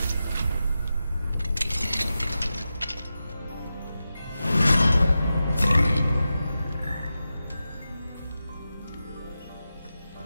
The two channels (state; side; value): inverted; both; correlation -0.92